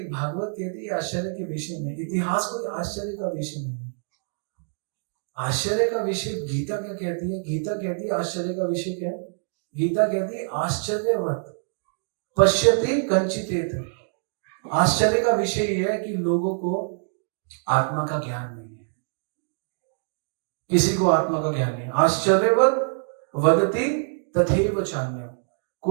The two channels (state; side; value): silent; left; digital silence